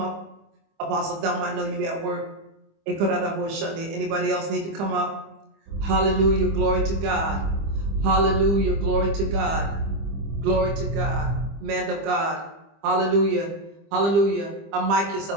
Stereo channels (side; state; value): left; late; 25 ms